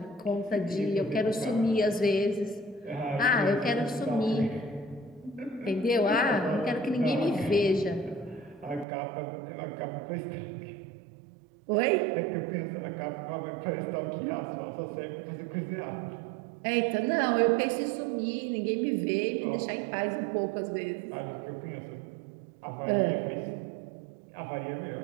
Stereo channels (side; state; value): left; drops out; at 8.8 s